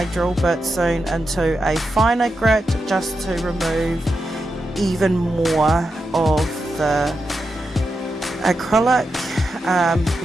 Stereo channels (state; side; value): normal; both; correlation 0.87